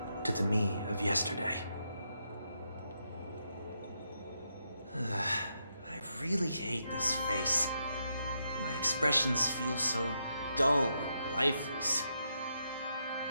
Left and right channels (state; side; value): inverted; both; correlation -0.81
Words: to the me of yesterday. I really hate this face. My expressions feel so dull and lifeless.